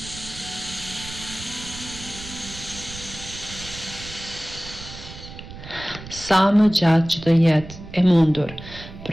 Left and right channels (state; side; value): noise; right; rumble, 14 dB below the sound